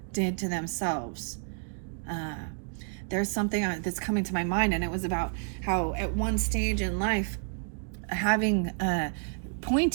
did to themselves. There's something that's coming to my mind, and it was about how at one stage in life, having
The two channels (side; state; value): left; silent; 58 dB below the other